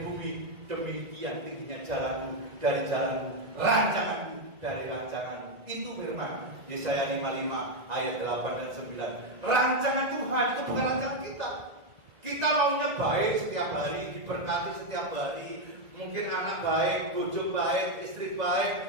bumi, demikian tingginya jalanmu dari jalanmu, rancanganku dari rancanganmu. Itu firman Yesaya 55 ayat 8 dan 9. Rancangan Tuhan itu bukan rancangan kita. Kita maunya baik setiap hari, diberkati setiap hari. Mungkin anak baik, bojo baik, istri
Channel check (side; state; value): left; late; 1.9 ms